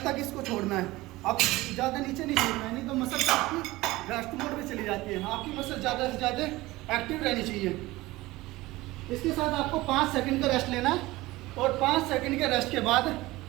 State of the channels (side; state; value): left; quieter; 19.2 dB